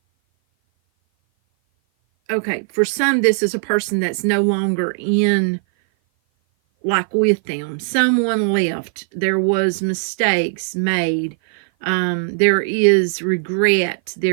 Okay, for some, this is a person that's no longer in, like, with them. Someone left. There was mistakes made. There is regret.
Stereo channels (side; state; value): left; silent; 56 dB below the other